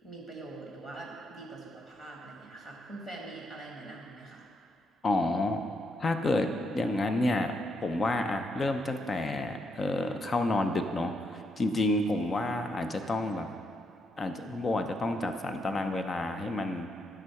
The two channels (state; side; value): normal; both; correlation 0.78